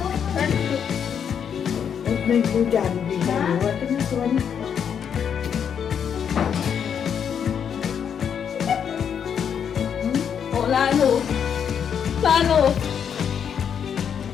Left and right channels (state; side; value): quieter; right; 7.8 dB